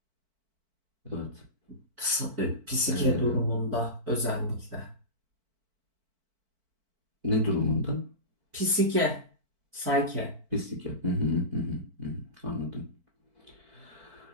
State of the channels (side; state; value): left; late; 4.5 ms